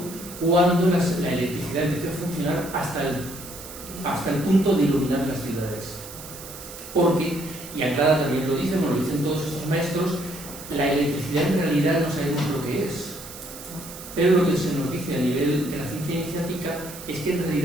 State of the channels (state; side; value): noise; right; hiss, 14 dB below the sound